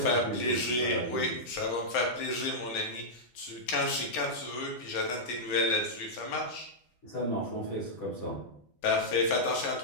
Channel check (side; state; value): right; late; 12 ms